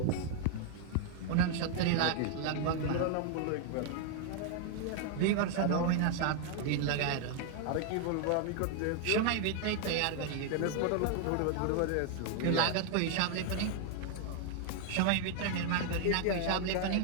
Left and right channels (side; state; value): both; different; correlation 0.00